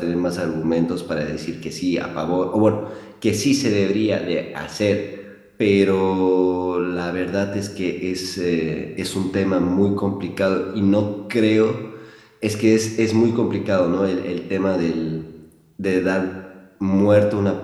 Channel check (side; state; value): both; identical; correlation 1.00